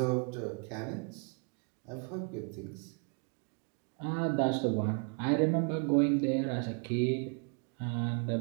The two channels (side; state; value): left; quieter; 37.9 dB